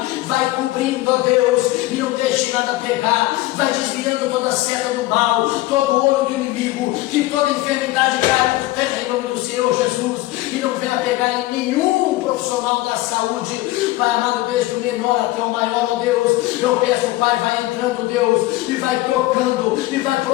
vai cobrindo, ó Deus, e não deixe nada pegar, vai desviando toda a seta do mal, todo o olho do inimigo, que toda enfermidade caia por terra em nome do Senhor Jesus, e não venha pegar em nenhum profissional da saúde. Pai amado, desde o menor até o maior, ó Deus, eu peço, Pai, vai entrando, Deus, e vai tocando, e vai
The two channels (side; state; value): right; quieter; 18.1 dB